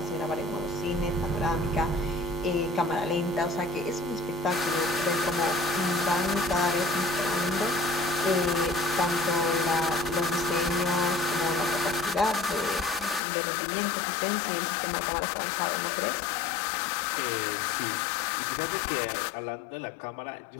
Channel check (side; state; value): right; drops out; at 13.2 s